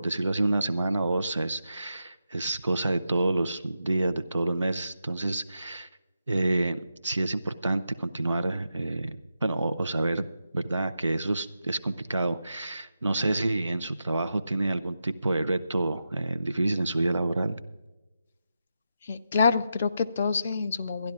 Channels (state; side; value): inverted; both; correlation -0.87